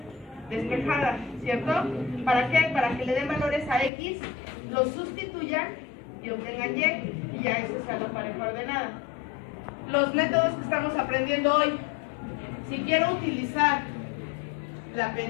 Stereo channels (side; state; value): right; drops out; at 3.9 s